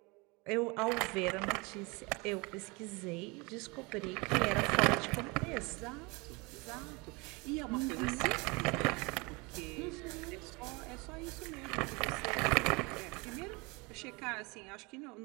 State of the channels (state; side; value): quieter; left; 27.1 dB